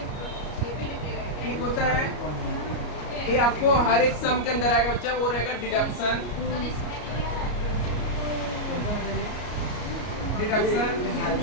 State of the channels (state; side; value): late; right; 33 ms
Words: एक होता है, ये आपको हर एक सम के अंदर आएगा बच्चा, वो रहेगा डिडक्शन।